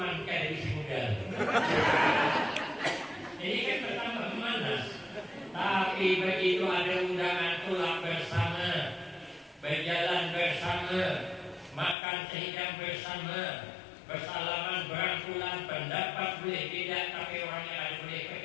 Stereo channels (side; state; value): right; drops out; at 12.0 s